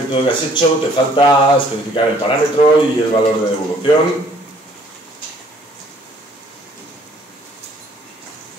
que has hecho te falta especificar el parámetro y el valor de devolución.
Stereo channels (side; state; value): both; normal; correlation 0.59